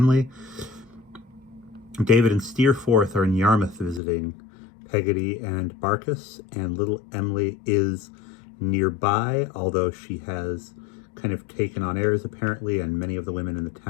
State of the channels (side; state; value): right; drops out; at 4.0 s